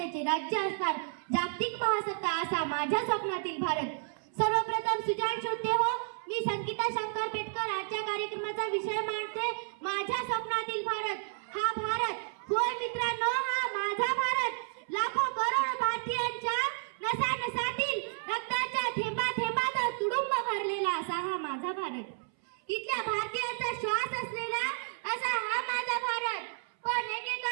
राज्य असणार, जागतिक महासत्ता असा माझ्या स्वप्नातील भारत. सर्वप्रथम सुजाण श्रोते हो, मी संगीता शंकर पेटकर आजच्या कार्यक्रमाचा विषय मांडते, माझ्या स्वप्नातील भारत. हा भारत, होय मित्रांनो, हा माझा भारत. लाखो करोड भारतीयांच्या नसानसातील रक्ताच्या थेंबा थेंबात तुडुंब भरलेला असा हा माझा भारत. इथल्या भारतीयांचा श्वास असलेला असा हा माझा भारत. पण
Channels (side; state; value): left; silent; 57 dB below the other